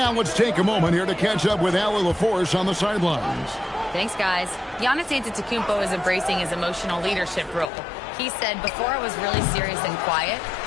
let's take a moment here to catch up with Allie LaForce on the sidelines. Thanks, guys. Giannis Antetokounmpo is embracing his emotional leadership role. He said, before I was really serious and quiet,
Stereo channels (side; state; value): right; drops out; at 7.7 s